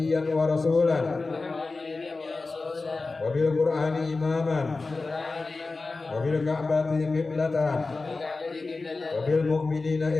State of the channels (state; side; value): quieter; right; 3.7 dB